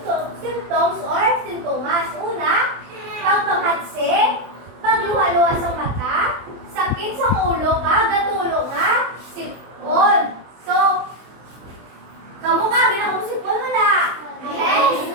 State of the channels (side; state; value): left; late; 24 ms